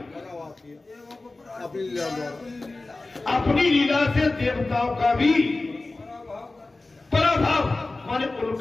अपनी लीला से देवताओं का भी पराभव, माने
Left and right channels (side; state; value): right; quieter; 3.2 dB